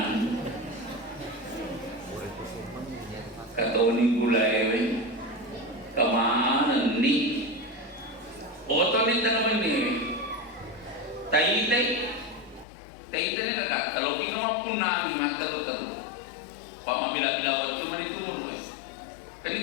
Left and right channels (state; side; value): drops out; right; at 12.7 s